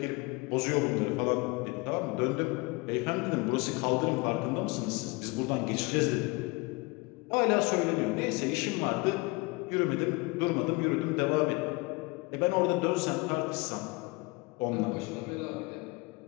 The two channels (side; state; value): right; quieter; 26.1 dB